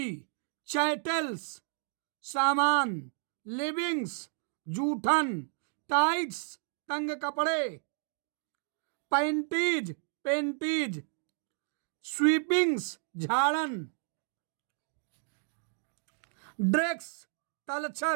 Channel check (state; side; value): silent; left; 56 dB below the other